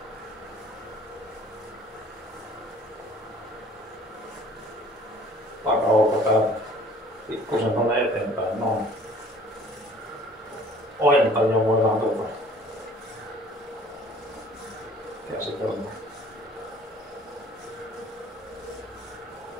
takaolkapäätä. Pikkusen tonne eteenpäin. Noin. Ojentaja voidaan tuolta käsitellä.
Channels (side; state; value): both; normal; correlation 0.51